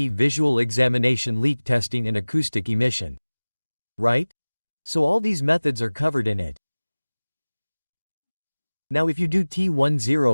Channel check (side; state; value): both; inverted; correlation -1.00